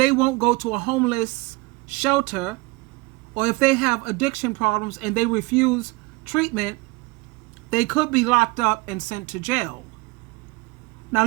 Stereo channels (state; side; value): quieter; left; 23.8 dB